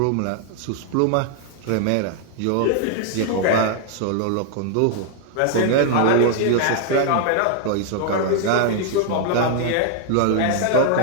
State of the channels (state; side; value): different; both; correlation 0.00